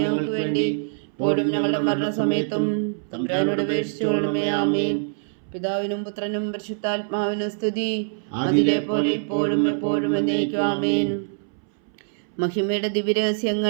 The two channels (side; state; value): left; silent; 62 dB below the other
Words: ഞങ്ങൾക്ക് വേണ്ടി ഇപ്പോഴും ഞങ്ങളുടെ മരണസമയത്തും തമ്പുരാനോട് അപേക്ഷിച്ചുകൊള്ളണമേ. ആമേൻ. പിതാവിനും പുത്രനും പരിശുദ്ധാത്മാവിനും സ്തുതി, അതിലെ പോലെ ഇപ്പോഴും എപ്പോഴും എന്നേക്കും. ആമേൻ. മഹിമയുടെ